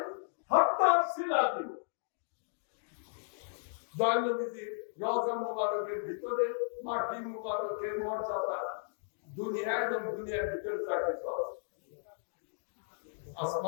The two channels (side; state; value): right; silent; digital silence